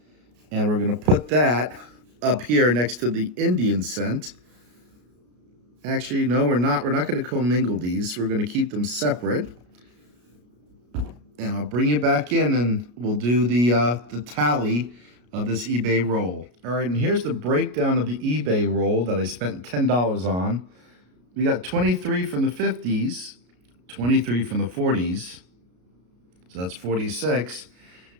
and we're going to put that up here next to the Indian cent. Actually, no, we're not. We're not going to commingle these. We're going to keep them separate. And I'll bring you back in, and we'll do the tally of this eBay roll. All right, and here's the breakdown of the eBay roll that I spent $10 on. We got 23 from the 50s, 23 from the 40s, so that's 46,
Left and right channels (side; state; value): left; late; 33 ms